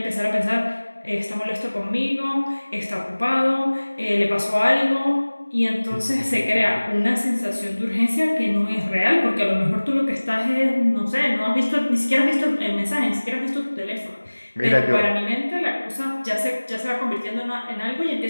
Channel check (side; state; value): both; inverted; correlation -1.00